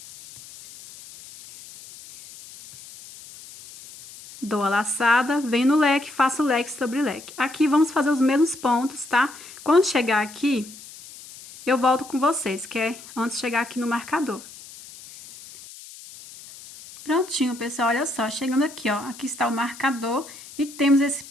Dou a laçada, venho no leque, faço leque sobre leque. Aqui vamos fazer os mesmos pontos, tá? Quando chegar aqui, eu volto com vocês, que é antes de chegar aqui no marcador. Prontinho, pessoal, olha só, chegando aqui, ó, aqui está o marcador e temos esse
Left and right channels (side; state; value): left; noise; hiss, 17 dB below the sound